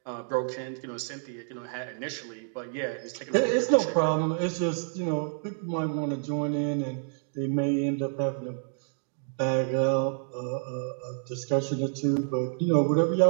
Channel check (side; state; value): left; silent; digital silence